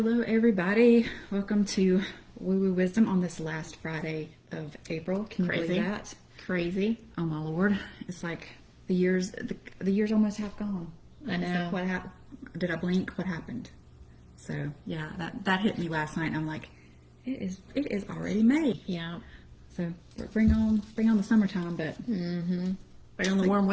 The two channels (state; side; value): identical; both; correlation 1.00